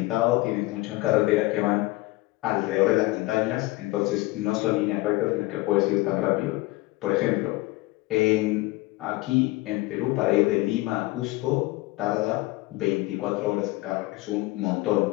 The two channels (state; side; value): quieter; right; 20.5 dB